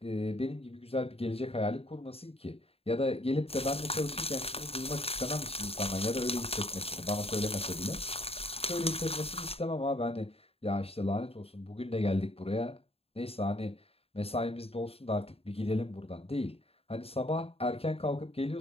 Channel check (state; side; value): late; right; 0.28 ms